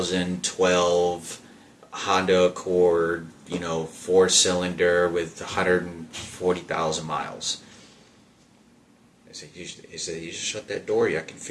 Honda Accord, 4-cylinder with 140,000 miles. He said, you just shut that door, I can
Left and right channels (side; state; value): both; identical; correlation 1.00